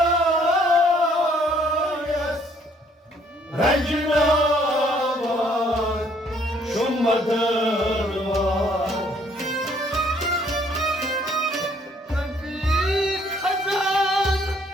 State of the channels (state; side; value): normal; both; correlation 0.64